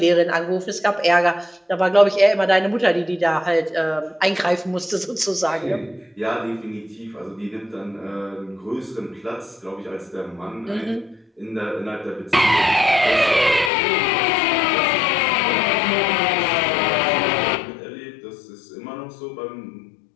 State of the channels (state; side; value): drops out; right; at 13.7 s